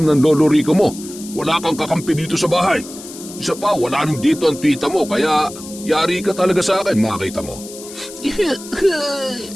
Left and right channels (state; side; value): noise; left; hiss, 15 dB below the sound